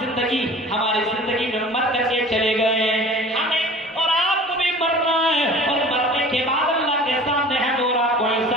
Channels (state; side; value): normal; both; correlation 0.43